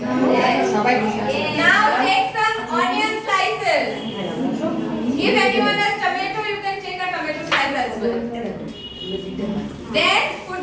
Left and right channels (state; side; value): identical; both; correlation 1.00